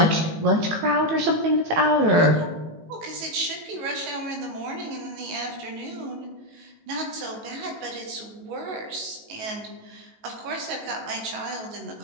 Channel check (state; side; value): late; left; 18 ms